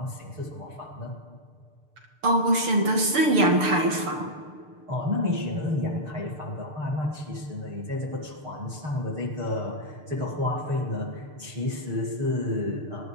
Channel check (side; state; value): left; late; 6.8 ms